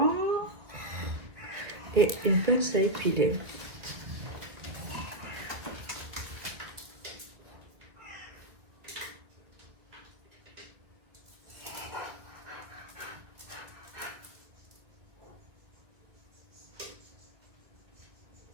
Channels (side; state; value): left; late; 2.1 ms